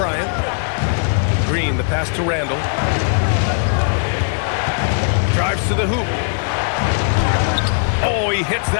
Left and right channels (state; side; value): silent; right; digital silence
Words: Green, the pass to Randall. Drives to the hoop. Oh, he hits